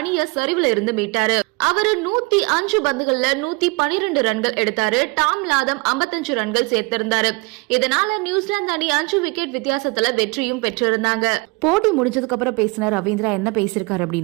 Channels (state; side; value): quieter; left; 26.4 dB